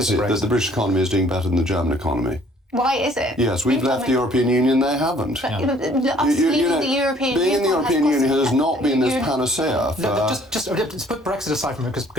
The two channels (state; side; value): normal; both; correlation 0.59